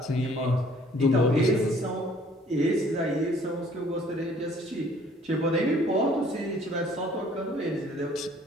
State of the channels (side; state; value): both; normal; correlation 0.57